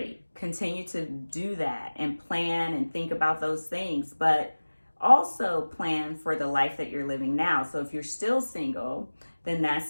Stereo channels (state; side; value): inverted; both; correlation -1.00